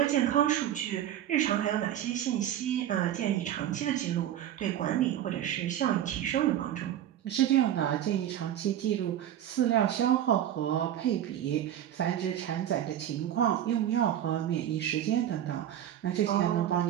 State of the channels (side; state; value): left; quieter; 11.2 dB